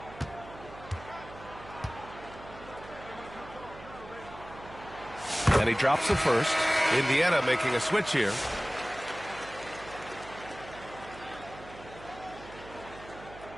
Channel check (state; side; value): noise; right; hum, 17 dB below the sound